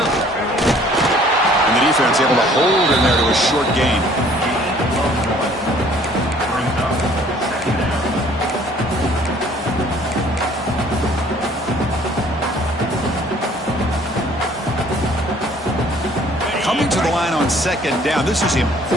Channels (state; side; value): normal; both; correlation 0.56